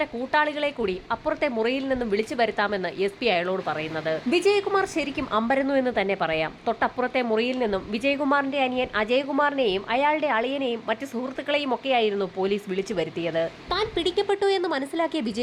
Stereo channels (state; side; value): identical; both; correlation 1.00